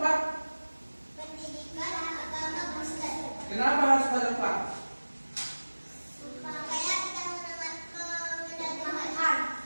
Pak? Pendidikan agama Kristen. Kenapa harus pada Pak?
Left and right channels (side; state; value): both; inverted; correlation -1.00